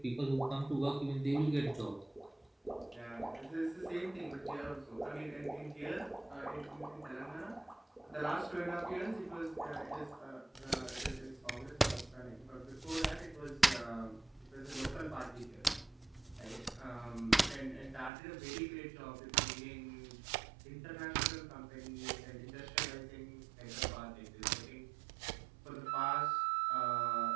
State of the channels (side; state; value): left; drops out; at 18.1 s